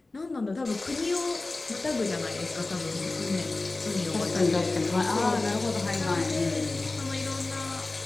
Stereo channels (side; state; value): right; quieter; 3.2 dB